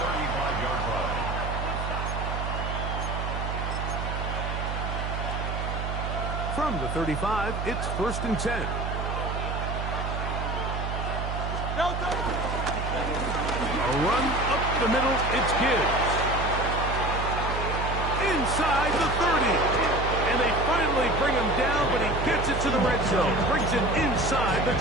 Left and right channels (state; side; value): noise; right; hum, 3 dB below the sound